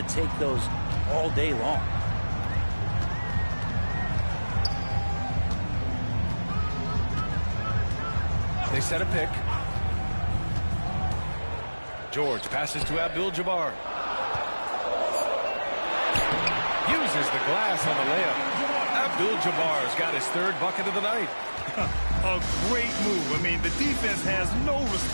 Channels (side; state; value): both; inverted; correlation -1.00